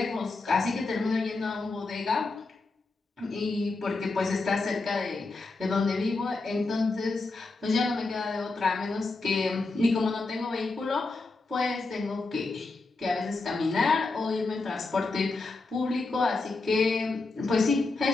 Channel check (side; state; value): right; quieter; 3.6 dB